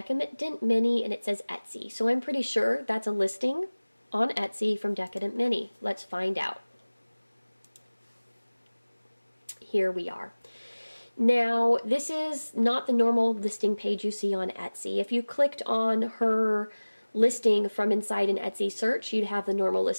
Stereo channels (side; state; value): both; inverted; correlation -1.00